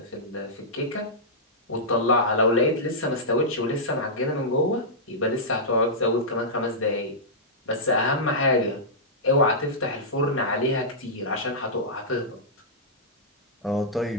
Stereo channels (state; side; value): normal; both; correlation -0.13